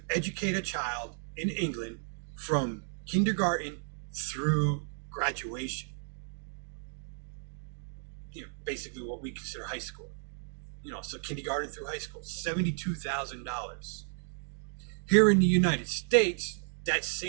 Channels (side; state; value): left; silent; digital silence